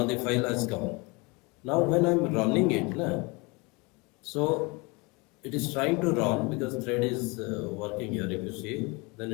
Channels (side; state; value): right; quieter; 27.7 dB